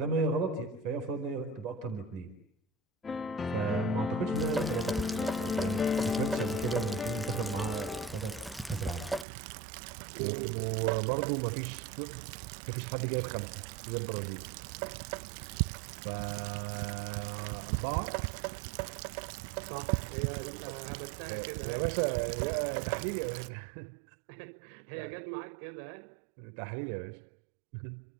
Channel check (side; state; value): left; drops out; at 9.2 s